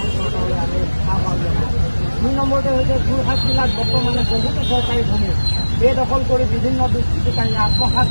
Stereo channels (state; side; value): inverted; both; correlation -1.00